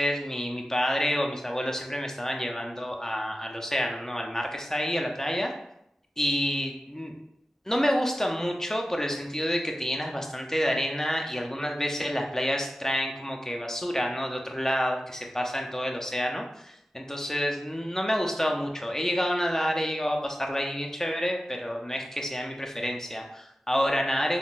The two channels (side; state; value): both; normal; correlation 0.93